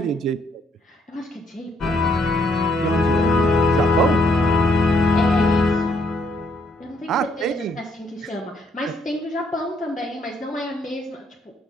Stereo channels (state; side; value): normal; both; correlation 0.71